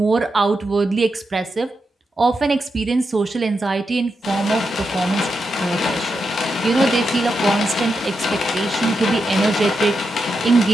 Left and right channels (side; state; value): both; normal; correlation 0.86